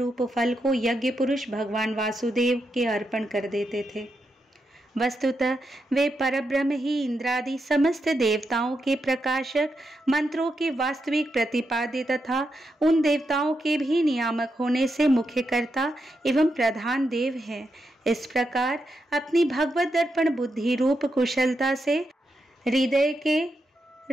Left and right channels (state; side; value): normal; both; correlation 0.84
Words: फल को यज्ञ पुरुष भगवान वासुदेव के अर्पण कर देते थे। वस्तुतः वे परब्रह्म ही इंद्रादि समस्त देवताओं के प्रकाशक, मंत्रों के वास्तविक प्रतिपाद्य तथा उन देवताओं के भी नियामक होने से मुख्यकर्ता एवं प्रधान देव हैं। इस प्रकार अपनी भगवत दर्पण बुद्धि रूप कुशलता से हृदय के